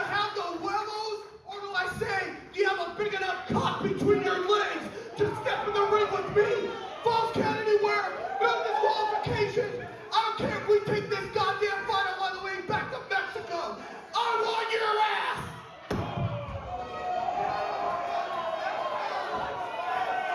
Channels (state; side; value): identical; both; correlation 1.00